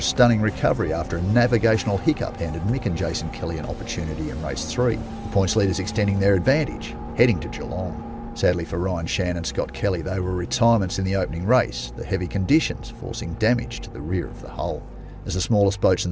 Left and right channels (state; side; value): identical; both; correlation 1.00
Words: stunning recovery after a navigational hiccup handed Mick and Jason Kelly an opportunity in race 3, the points leaders extending their advantage, heading to Geelong. Sadly for Ryan Shan and Scott Kelly, they were retirements in the opening race, the heavy conditions forcing damage to the rear of the hull. As the smallest boats in